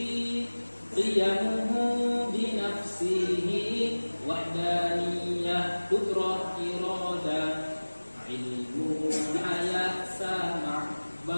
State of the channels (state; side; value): inverted; both; correlation -1.00